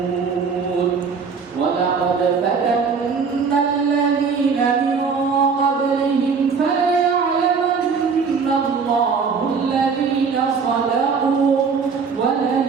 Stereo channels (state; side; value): quieter; left; 5.5 dB